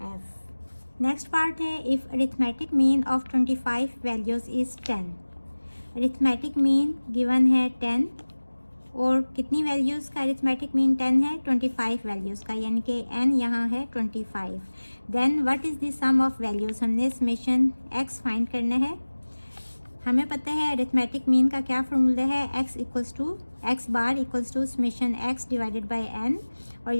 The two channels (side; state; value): both; inverted; correlation -1.00